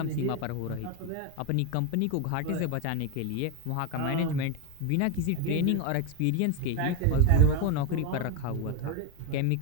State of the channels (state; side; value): different; both; correlation 0.01